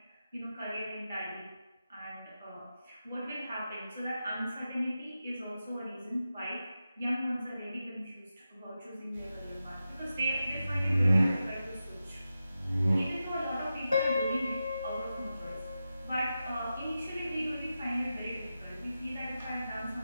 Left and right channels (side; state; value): both; inverted; correlation -0.91